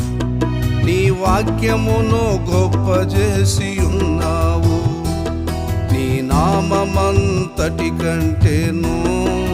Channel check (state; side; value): identical; both; correlation 1.00